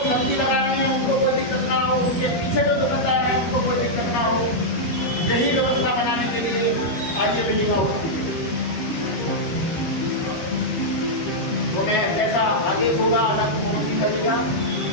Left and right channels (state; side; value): late; right; 13 ms